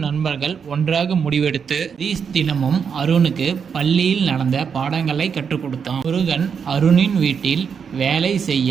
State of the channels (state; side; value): quieter; left; 6.7 dB